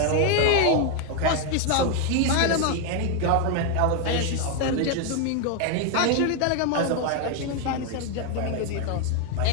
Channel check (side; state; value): both; different; correlation 0.01